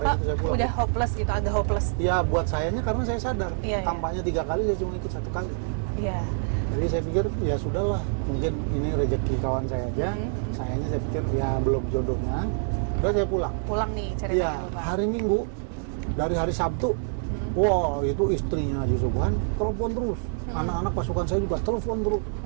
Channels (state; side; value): silent; left; digital silence